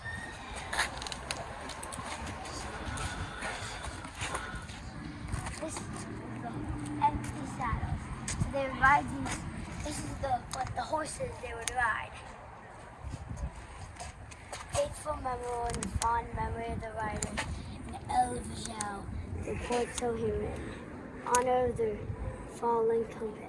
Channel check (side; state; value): both; identical; correlation 1.00